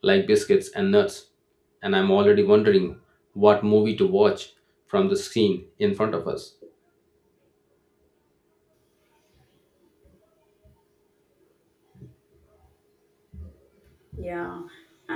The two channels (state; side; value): identical; both; correlation 1.00